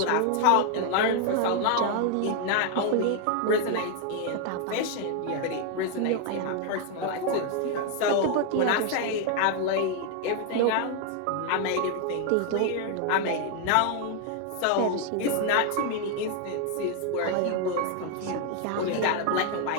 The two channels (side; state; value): both; different; correlation 0.00